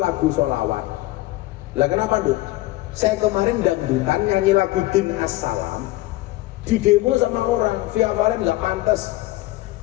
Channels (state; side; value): quieter; right; 18.1 dB